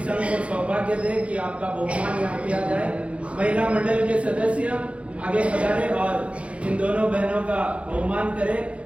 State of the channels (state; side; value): late; left; 0.062 ms